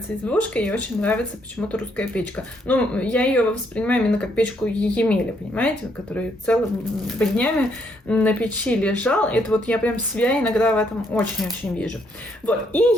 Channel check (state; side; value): normal; both; correlation 0.72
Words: избушка и очень нравится почему-то русская печка. Ну, я ее воспринимаю именно как печку Емеля, понимаете, который целыми днями на печи лежал. Это вот я прям себя иногда в этом очень-очень вижу. Вот, и